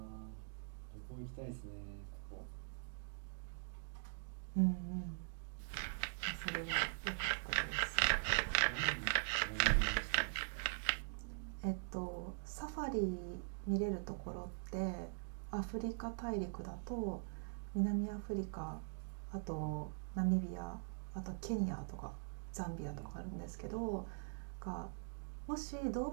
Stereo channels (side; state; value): left; silent; digital silence